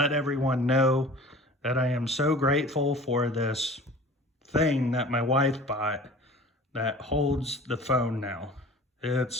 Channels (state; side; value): normal; both; correlation 0.43